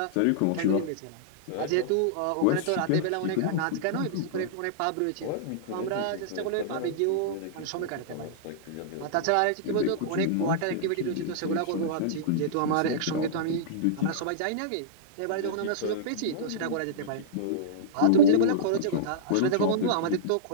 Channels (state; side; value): different; both; correlation -0.03